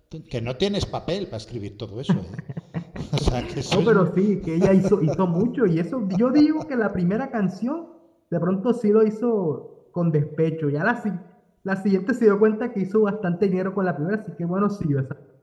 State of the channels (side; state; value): both; identical; correlation 1.00